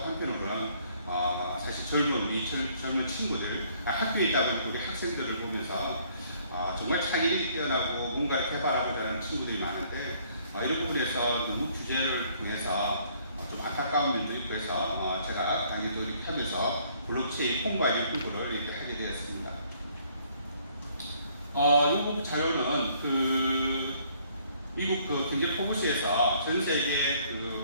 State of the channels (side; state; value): both; inverted; correlation -0.63